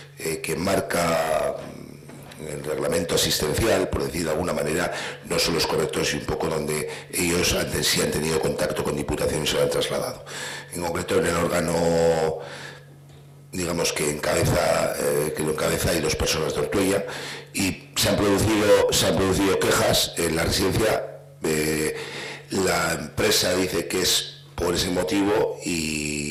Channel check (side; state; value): both; identical; correlation 1.00